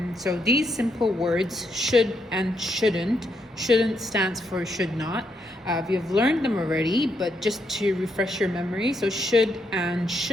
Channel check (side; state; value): both; normal; correlation 0.78